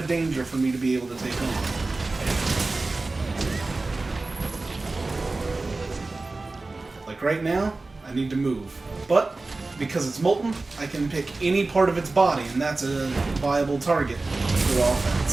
danger for me to be able to take on. Like right now, I need to move. But because it's molten, I can pick any part of its body, and that's a viable target for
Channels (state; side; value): quieter; left; 3.4 dB